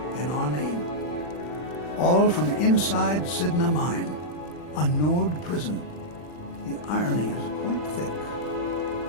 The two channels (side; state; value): right; late; 40 ms